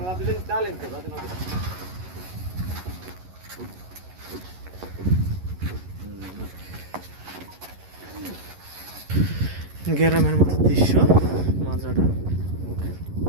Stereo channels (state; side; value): late; left; 11 ms